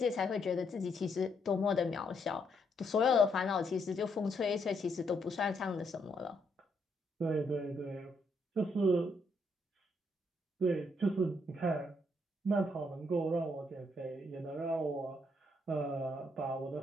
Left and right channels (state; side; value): normal; both; correlation 0.75